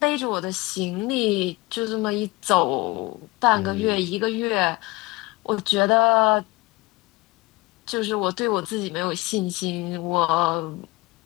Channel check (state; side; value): quieter; right; 22.2 dB